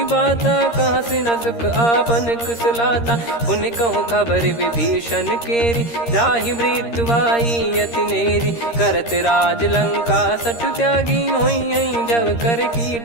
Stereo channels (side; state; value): right; late; 13 ms